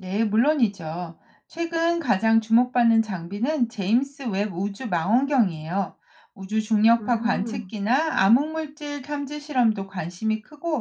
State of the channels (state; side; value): identical; both; correlation 1.00